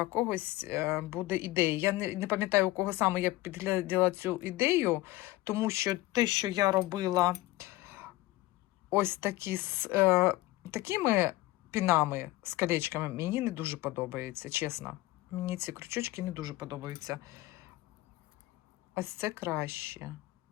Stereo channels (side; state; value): right; quieter; 18.1 dB